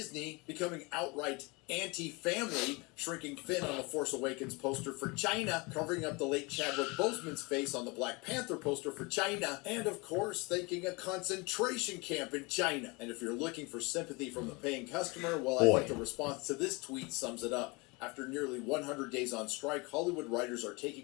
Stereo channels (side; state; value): right; quieter; 26.9 dB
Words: becoming outright anti-family, shrinking Finn on the Force Awakens poster for China, covering up the late Chadwick Boseman's face on the Black Panther poster for China, and of course thanking a concentration camp in China. And if you're looking for sympathy from the paying customer, well, I think the response to this tweet sums it up. After nearly 100 days on strike, Hollywood writers are